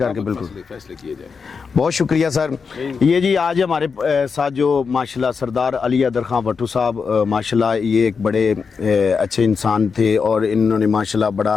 کے بالکل فیصلے کیے جائیں. بہت شکریہ سر. یہ جی آج ہمارے ساتھ جو ماشاءاللہ سردار علی حیدر خان بھٹو صاحب ماشاءاللہ یہ ایک بڑے اچھے انسان تھے اور انہوں نے ماشاءاللہ بڑا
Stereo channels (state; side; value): quieter; right; 5.5 dB